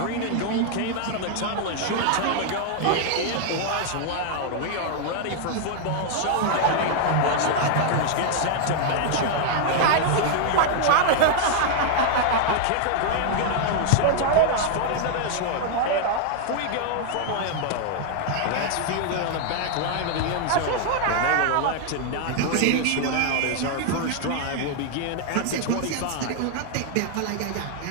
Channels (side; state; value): both; different; correlation 0.00